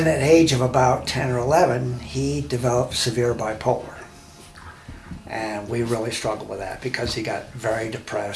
at the age of about 10 or 11, he developed severe bipolar. And we really struggled with that because he got very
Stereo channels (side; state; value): both; identical; correlation 1.00